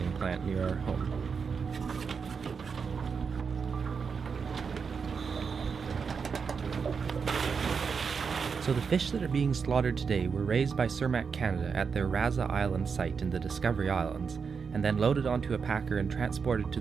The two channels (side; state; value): left; quieter; 5.8 dB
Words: plant near our home. So the fish that are being slaughtered today were raised by Cermak Canada at their Raza Island site in the Discovery Islands, and then loaded onto a packer and transported to